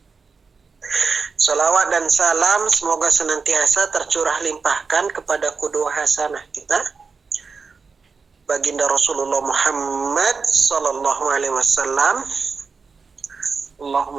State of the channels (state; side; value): quieter; left; 4.9 dB